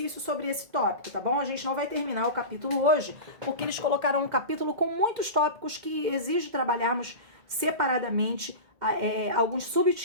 sobre esse tópico, tá bom? A gente não vai terminar o capítulo hoje, porque eles colocaram um capítulo com muitos tópicos que exige trabalharmos separadamente alguns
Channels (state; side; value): late; left; 2.1 ms